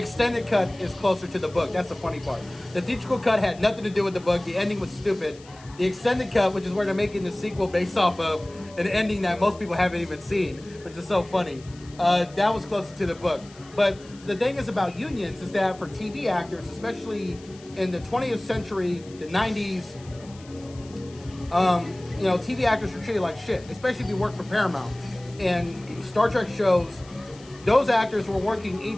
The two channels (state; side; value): noise; left; hiss, 23 dB below the sound